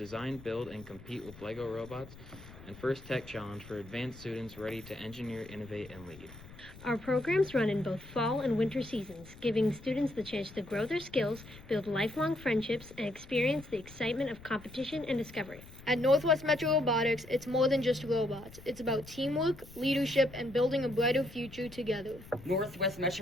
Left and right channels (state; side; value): noise; left; rumble, 18 dB below the sound